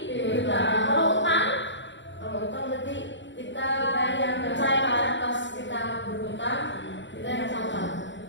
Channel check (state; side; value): late; right; 0.53 ms